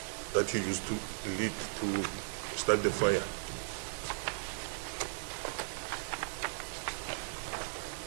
that he used to lit to start the fire.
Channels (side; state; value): left; silent; 53 dB below the other